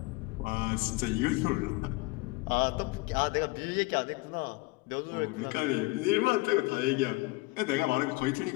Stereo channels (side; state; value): right; quieter; 23.3 dB